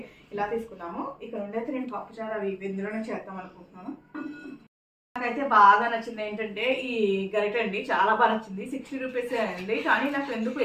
ఇలా తీసుకున్నాము. ఇక్కడ ఉండైతే నేను పప్పుచారు అవి ఇందులోనే చేద్దాం అనుకుంటున్నాను. నాకైతే బాగా నచ్చింది ఏంటంటే ఈ గరిట అండి, చాలా బాగా నచ్చింది. 60 రూపీస్ అండి, కానీ నాకు ఎందుకు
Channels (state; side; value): identical; both; correlation 1.00